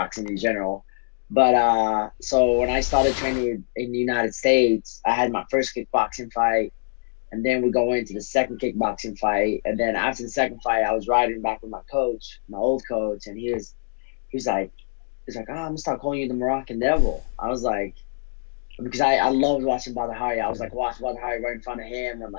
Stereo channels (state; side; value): silent; right; 62 dB below the other